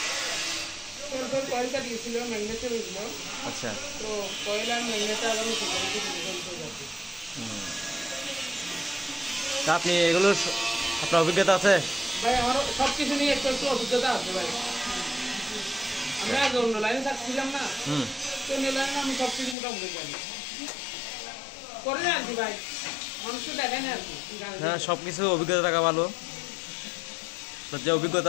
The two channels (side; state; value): right; drops out; at 19.6 s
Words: আচ্ছা, তা আপনি এগুলোর আপনার অভিজ্ঞতা আছে? ভাই আমার সবকিছু নিয়ে একটু অভিজ্ঞতা আছে ভাই। আমরা আগে অন্য লাইনে থাকছিলাম না, তো অন্য লাইনে আমি সবকিছু মোটামুটি জানি করে না আর কি ভাই, মানুষকে দেখেন আর কি। হ্যাঁ, সবকিছু অভিজ্ঞতা থাকা ভালো। যে অভিজ্ঞতা